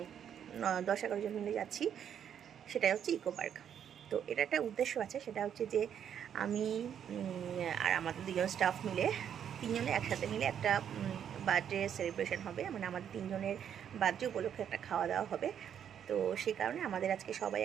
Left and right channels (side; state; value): left; quieter; 8.9 dB